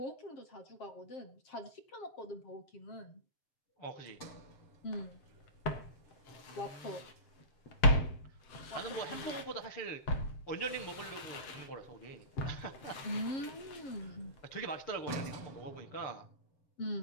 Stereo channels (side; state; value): right; late; 7.6 ms